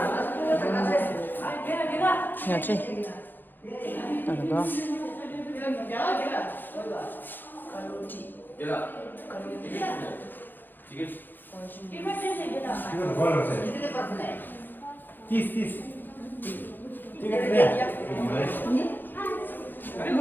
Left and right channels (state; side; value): late; right; 0.093 ms